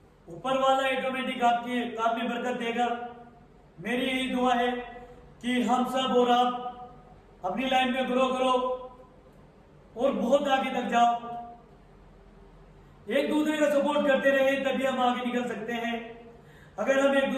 ऊपर वाला ऑटोमेटिक आपके काम में बरकत देगा। मेरी यही दुआ है कि हम सब और आप अपनी लाइफ में ग्रो करो और बहुत आगे तक जाओ। एक दूसरे का सपोर्ट करते रहे, तभी हम आगे निकल सकते हैं। अगर हम एक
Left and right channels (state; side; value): identical; both; correlation 1.00